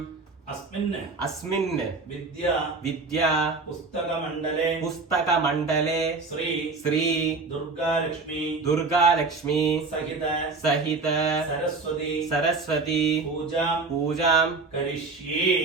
അസ്മിൻ अस्मिन् വിദ്യ विद्या പുസ്തകമണ്ഡലേ पुस्तकमण्डले ശ്രീ श्री ദുർഗാലക്ഷ്മി दुर्गा लक्ष्मी സഹിത सहित സരസ്വതി सरस्वती പൂജാം पूजां കരിഷ്യേ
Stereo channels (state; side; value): quieter; left; 4.0 dB